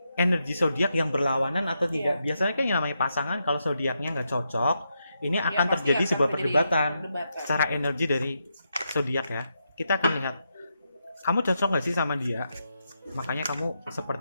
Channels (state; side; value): inverted; both; correlation -0.84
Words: energi zodiak yang berlawanan atau tidak? Biasanya kan yang namanya pasangan, kalau zodiaknya nggak cocok, ini akan terjadi sebuah perdebatan secara energi dari zodiak ya. Kita akan lihat, kamu cocok nggak sih sama dia? Makanya kamu